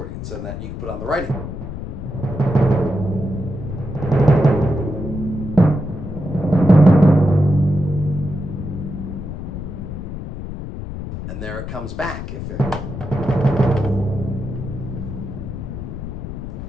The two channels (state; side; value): noise; left; rumble, 7 dB below the sound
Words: and that you can put on the right hand. And there it comes back.